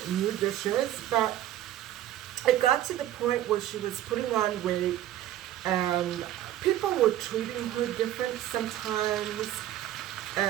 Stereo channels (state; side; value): quieter; left; 12.9 dB